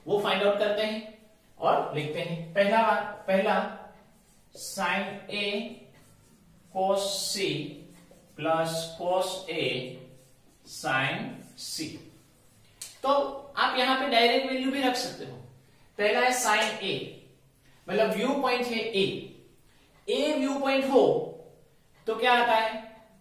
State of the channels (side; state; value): both; identical; correlation 1.00